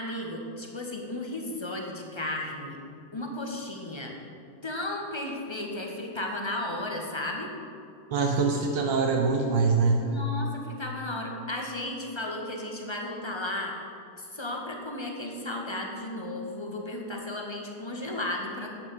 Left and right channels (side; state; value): right; late; 1.3 ms